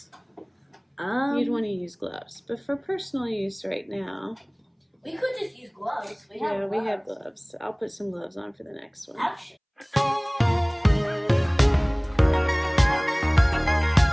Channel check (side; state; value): both; identical; correlation 1.00